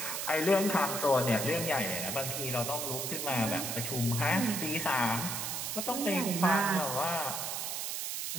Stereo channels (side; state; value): right; noise; hiss, 3 dB below the sound